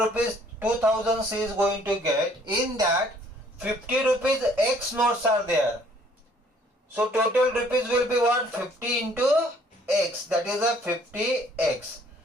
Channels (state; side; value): normal; both; correlation 0.60